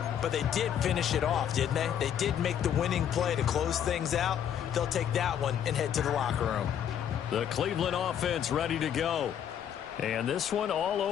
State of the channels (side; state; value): right; quieter; 9.3 dB